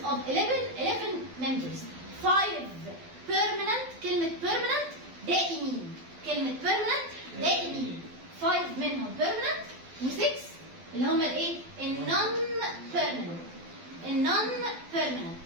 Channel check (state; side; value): late; left; 12 ms